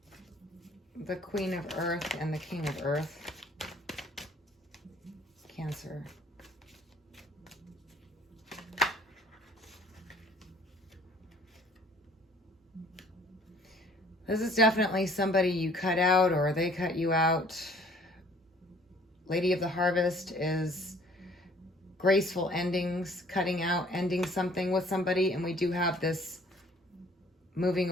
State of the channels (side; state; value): both; normal; correlation 0.56